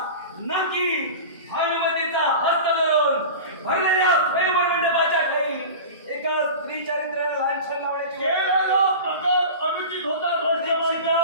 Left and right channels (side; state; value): both; inverted; correlation -0.31